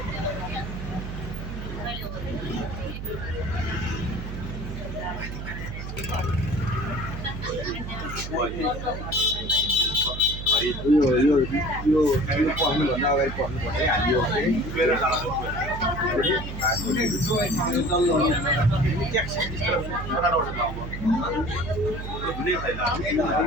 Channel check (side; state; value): right; noise; hum, 7 dB below the sound